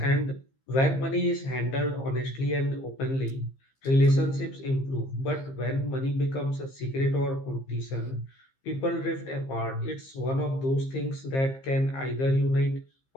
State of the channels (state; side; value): late; right; 15 ms